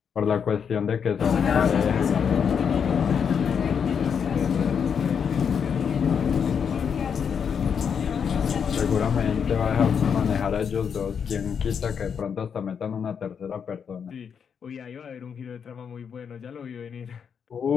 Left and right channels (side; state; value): right; quieter; 7.1 dB